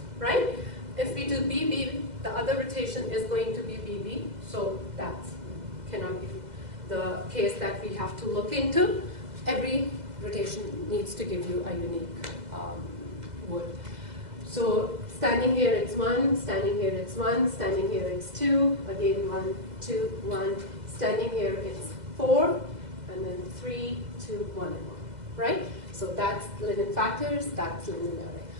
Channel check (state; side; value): late; left; 2.0 ms